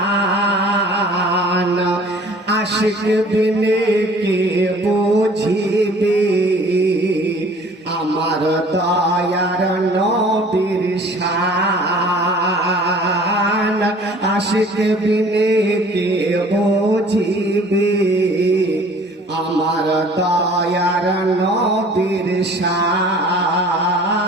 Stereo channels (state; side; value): normal; both; correlation 0.50